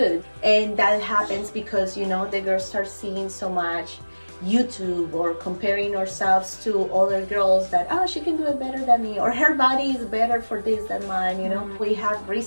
And that happens because the girls start seeing so much YouTube or comparing ourselves to other girls that, oh, she can do it better than me, or her body is better for this than mine. We have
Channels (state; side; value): inverted; both; correlation -1.00